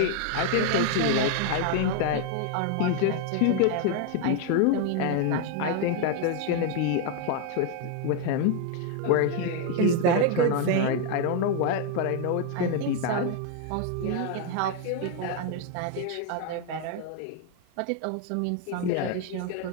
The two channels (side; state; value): both; different; correlation 0.01